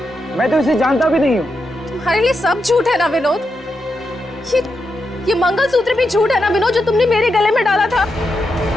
मैं तो इसे जानता भी नहीं हूँ। तुम्हारे लिए सब झूठ है ना विनोद? ये मंगलसूत्र भी झूठ है ना विनोद, जो तुमने मेरे गले में डाला था?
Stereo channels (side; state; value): both; normal; correlation 0.85